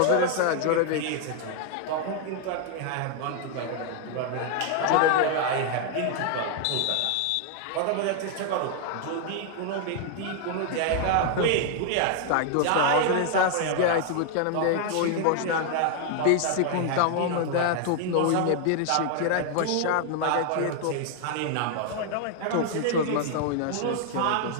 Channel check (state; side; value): different; both; correlation 0.00